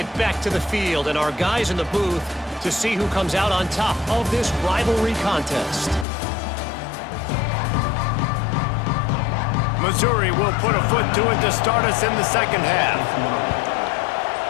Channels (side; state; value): right; drops out; at 6.1 s